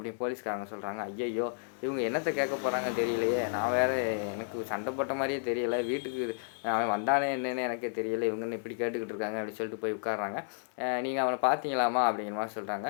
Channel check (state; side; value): silent; right; digital silence